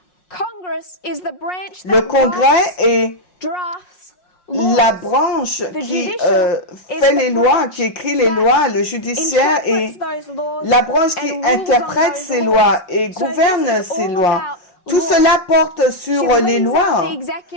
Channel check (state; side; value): late; right; 5.5 ms